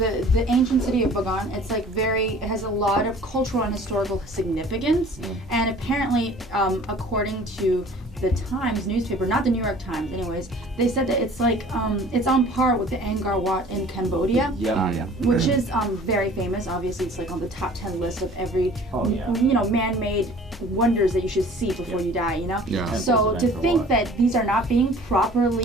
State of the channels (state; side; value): normal; both; correlation 0.49